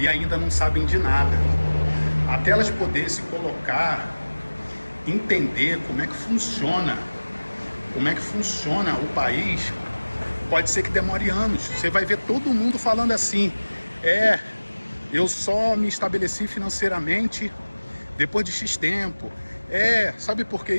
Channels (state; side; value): inverted; both; correlation -1.00